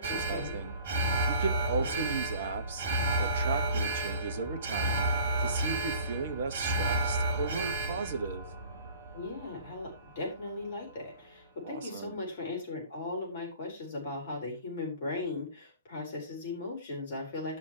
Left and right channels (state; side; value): inverted; both; correlation -0.49